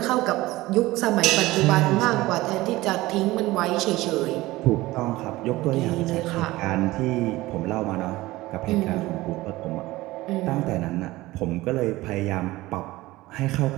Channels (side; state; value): left; quieter; 18.7 dB